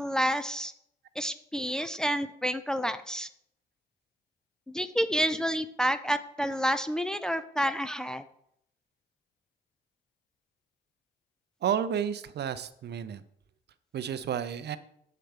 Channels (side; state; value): both; normal; correlation 0.71